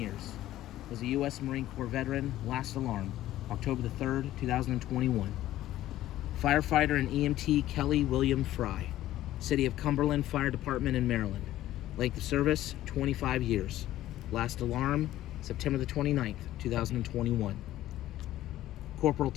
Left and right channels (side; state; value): right; quieter; 14.2 dB